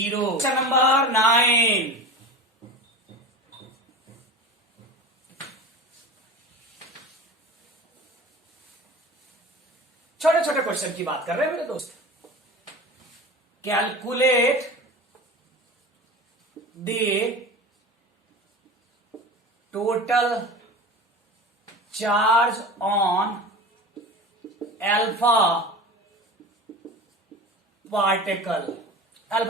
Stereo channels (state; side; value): normal; both; correlation 0.33